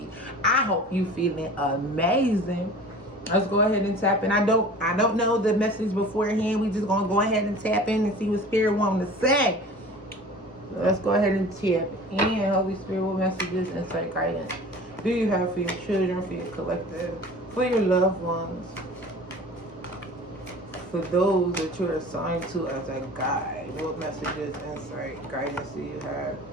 I hope you feeling amazing. Let's go ahead and tap in. I don't know the message beforehand. We just gonna go ahead and tap in and see what Spirit wants to say. Let's go ahead and tap in. Holy Spirit, what messages, insight, guidance do you have for your children, for your collective, for your loved ones, for those that you're assigned to as a guide? What messages, insight, guidance do you have?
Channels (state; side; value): normal; both; correlation 0.41